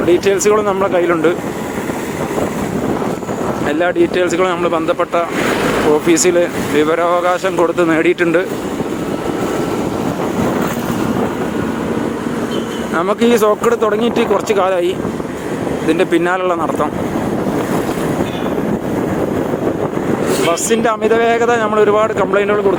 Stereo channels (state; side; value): identical; both; correlation 1.00